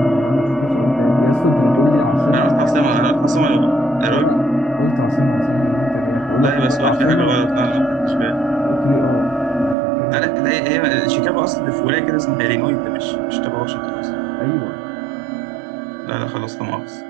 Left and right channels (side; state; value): left; drops out; at 9.8 s